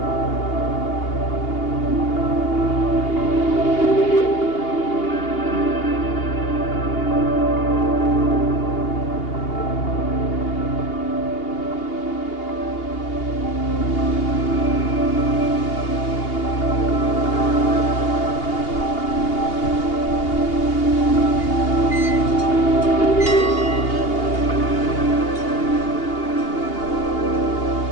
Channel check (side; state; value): right; late; 2.8 ms